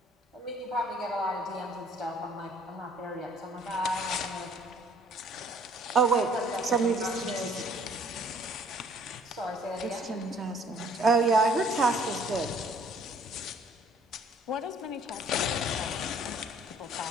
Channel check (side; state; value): both; normal; correlation 0.58